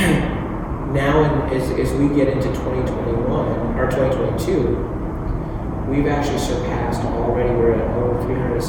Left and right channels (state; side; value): identical; both; correlation 1.00